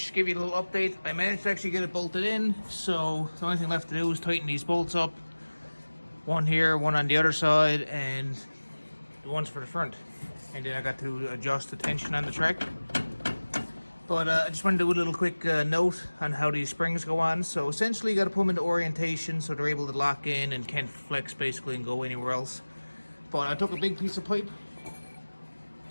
give you a little update. I managed to actually get it bolted in, so the only thing left to do is tighten these bolts up. One here, one on the other side, and the ones for the front. And then I got to adjust the tension on the track. But I just want to do a little quick note on how these springs go on. So essentially you got to put them into orientation so they're able to lock in and can't flex basically and go anywhere else. But I took a big piece of pipe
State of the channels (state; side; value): inverted; both; correlation -1.00